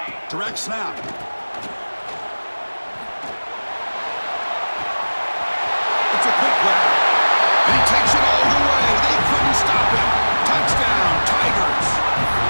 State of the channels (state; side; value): inverted; both; correlation -1.00